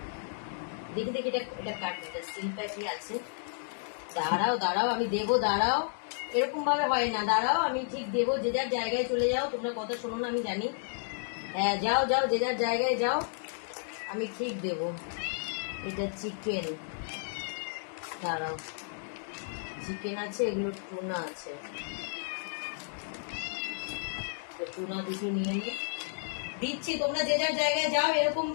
দেখি দেখি এটা কাট, এটা স্টিল প্যাকই আছে। দাঁড়াও দাঁড়াও, আমি দেবো, দাঁড়াও, এরকম ভাবে হয় না, দাঁড়াও আমি ঠিক দেবো। যে যার জায়গায় চলে যাও, তোমরা কথা শোনো না আমি জানি। হ্যাঁ যাও যাও, যে যার জায়গায় যাও, আমি ঠিক দেবো। এটা চিকেন, দাঁড়াও, চিকেন আছে, এগুলো টুনা আছে, টুনা দুটো নিয়ে নিই, দিচ্ছি। তোমরা যে যার জায়গায় যাও। এরকম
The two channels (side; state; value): right; silent; digital silence